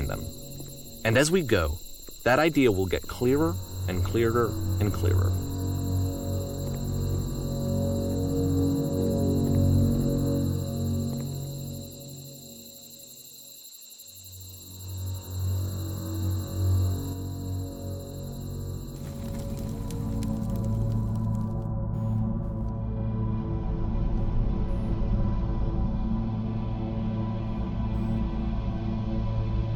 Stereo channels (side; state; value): both; identical; correlation 1.00